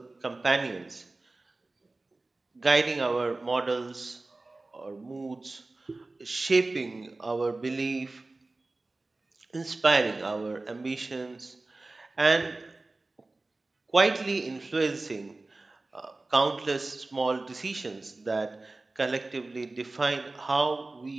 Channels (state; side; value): quieter; left; 3.2 dB